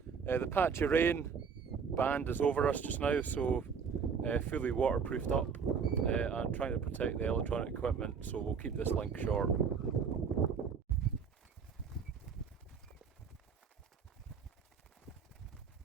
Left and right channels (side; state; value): left; quieter; 6.2 dB